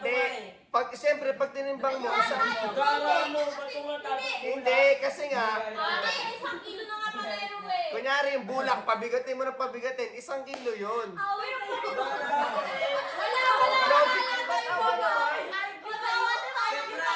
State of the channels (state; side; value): identical; both; correlation 1.00